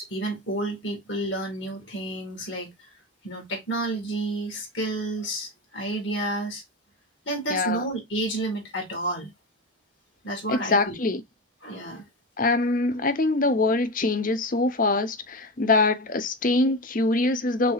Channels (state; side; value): normal; both; correlation 0.20